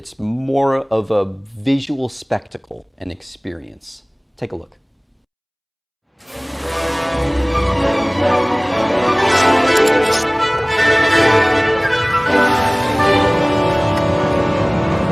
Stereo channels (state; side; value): identical; both; correlation 1.00